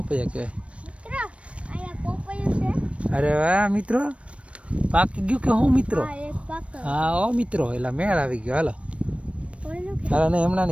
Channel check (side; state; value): left; late; 0.062 ms